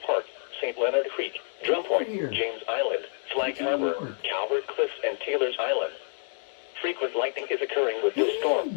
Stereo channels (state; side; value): silent; right; digital silence